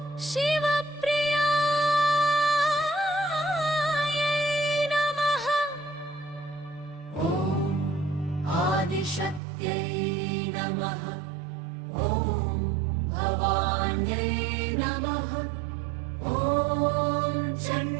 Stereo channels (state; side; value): drops out; left; at 9.4 s